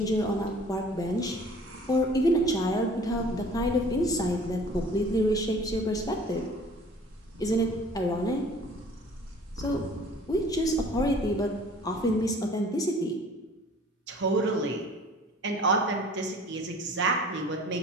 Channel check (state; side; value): normal; both; correlation 0.49